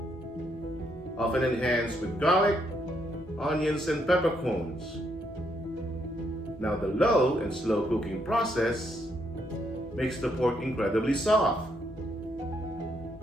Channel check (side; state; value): both; normal; correlation 0.75